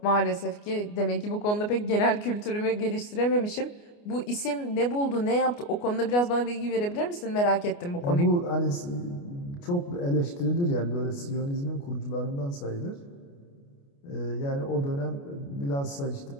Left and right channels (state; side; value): late; right; 29 ms